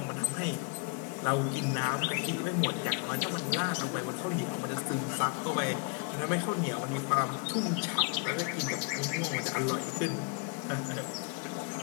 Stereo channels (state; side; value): quieter; right; 32.6 dB